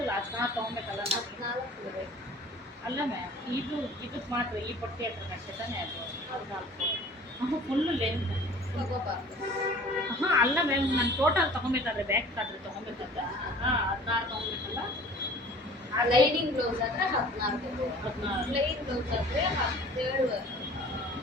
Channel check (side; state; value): both; normal; correlation 0.46